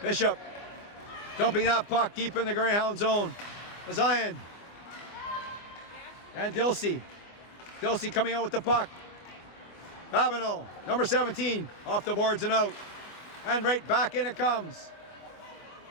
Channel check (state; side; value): late; right; 25 ms